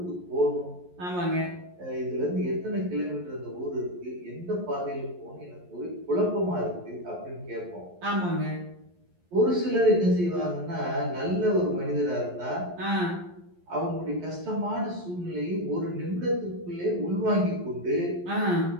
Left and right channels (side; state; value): left; late; 11 ms